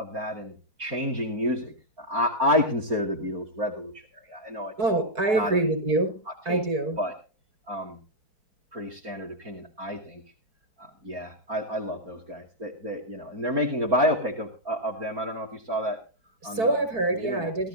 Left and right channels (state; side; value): late; left; 4.6 ms